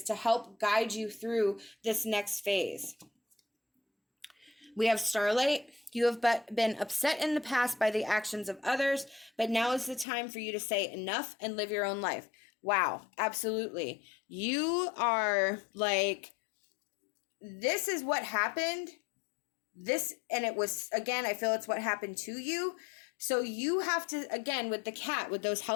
to help guide you through this next phase. We have starlight. You have been upset in the past by the actions of others, but now is the time for you to say enough and live your own life. Wow, absolutely. You are like, this is what happened. And it was, again, I feel it's what happened to you. So you have to, again, with the cat, with those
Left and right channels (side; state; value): right; drops out; at 10.1 s